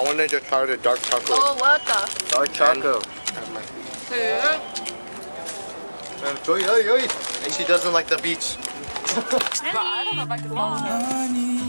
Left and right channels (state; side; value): inverted; both; correlation -1.00